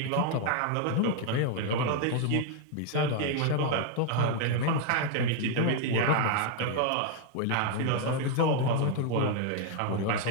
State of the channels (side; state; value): both; different; correlation 0.00